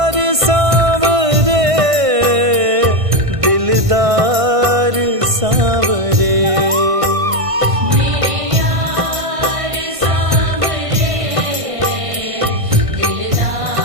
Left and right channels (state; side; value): late; left; 1.5 ms